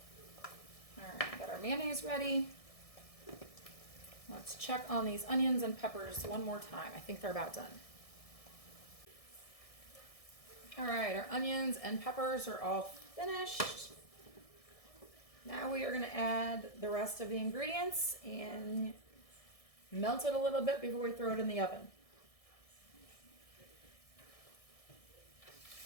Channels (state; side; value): late; right; 1.6 ms